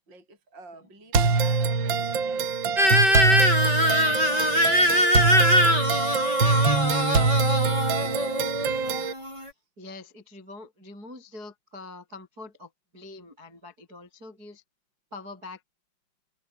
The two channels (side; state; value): left; late; 5.2 ms